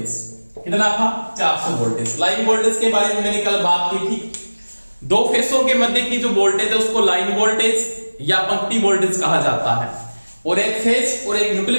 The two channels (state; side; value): inverted; both; correlation -1.00